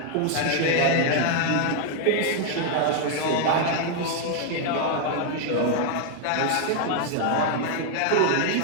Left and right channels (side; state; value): both; different; correlation 0.00